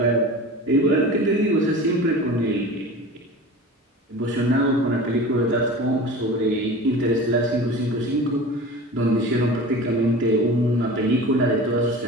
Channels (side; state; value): both; normal; correlation 0.36